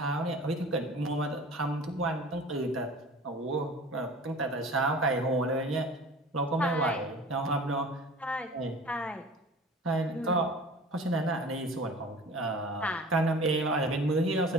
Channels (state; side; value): normal; both; correlation 0.41